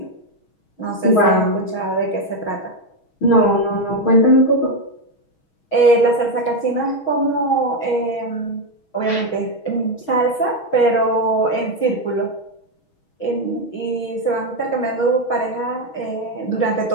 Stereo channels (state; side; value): late; right; 6.3 ms